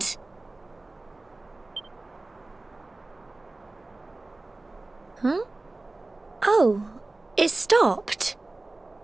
Huh? Oh, it stopped.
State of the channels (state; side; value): quieter; left; 3.0 dB